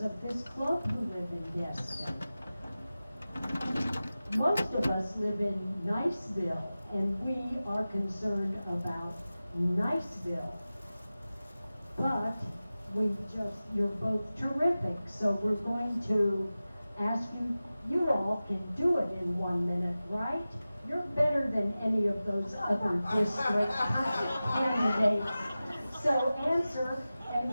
this club who live in Destin. Most of us live in Niceville, and we are concerned about Niceville. But you're both terrific, so we're going to ask you, you all can do it in 1 minute, right? You're better than any of those other district candidates. So answer,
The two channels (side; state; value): both; inverted; correlation -0.96